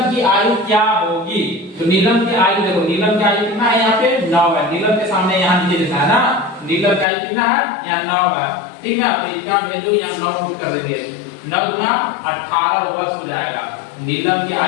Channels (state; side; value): drops out; right; at 7.1 s